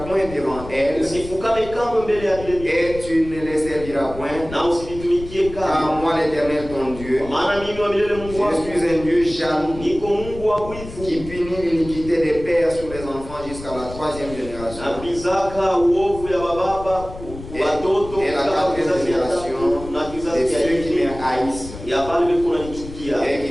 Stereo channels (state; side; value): noise; left; rumble, 13 dB below the sound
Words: point devant elles, Usifukame kamwe mbele ya vile vitu et tu ne les serviras point, na usivitumikie car kamwe, moi l'Éternel ton Dieu, kwa maana mimi wa milele Mungu wako je suis un Dieu jaloux, niko Mungu wa wivu, qui punit l'iniquité des pères sur les enfants jusqu'à la 3e génération. napizaka uovu ya bababa watoto Et la mpaka 4e kizazi ya tatu génération na de kizazi ya ceux qui me nne haïssent, ya pale biko nanichukia. et